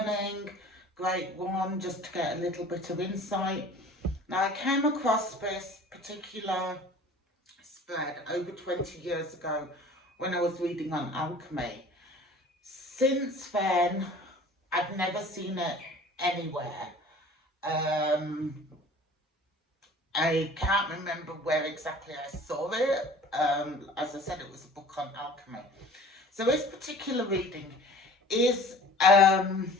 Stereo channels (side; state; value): both; normal; correlation 0.46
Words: Great one just to get a little bit of insight. Now, I came across this particular spread over 20 years ago when I was reading on alchemy. Since then, I've never seen it anywhere. Um, I can't remember where exactly I saw it. As I said, it was a book on alchemy. So this particular reading is